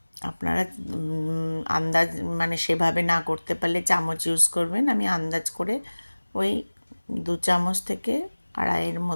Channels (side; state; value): both; inverted; correlation -1.00